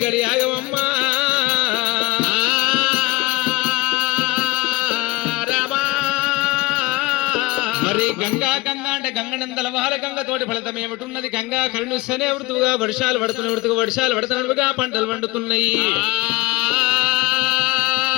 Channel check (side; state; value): right; quieter; 21.3 dB